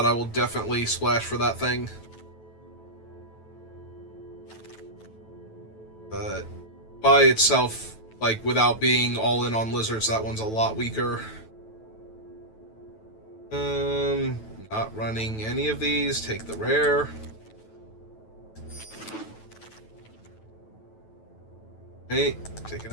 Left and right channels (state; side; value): late; right; 9.2 ms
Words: I will definitely splash for that thing. But by itself, like, without being all in on lizards, that one's a lot weaker. Not running any of these. Take the rare. Okay, take